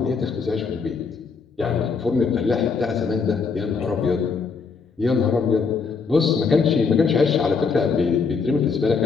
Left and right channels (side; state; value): right; quieter; 5.2 dB